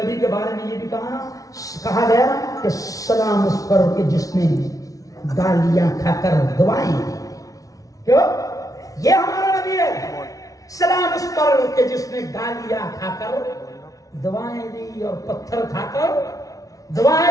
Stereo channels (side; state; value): right; late; 0.17 ms